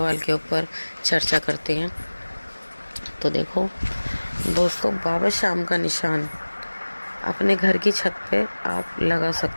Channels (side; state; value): both; inverted; correlation -1.00